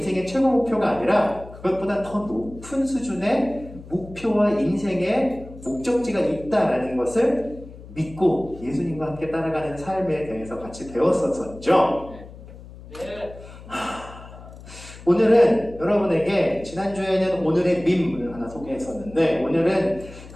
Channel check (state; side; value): noise; left; hum, 17 dB below the sound